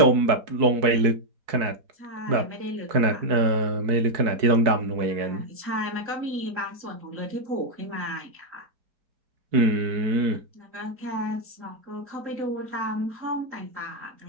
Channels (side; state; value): left; late; 4.6 ms